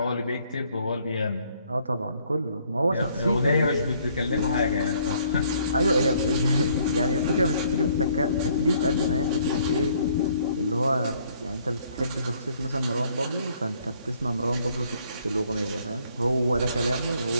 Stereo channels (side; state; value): both; inverted; correlation -0.64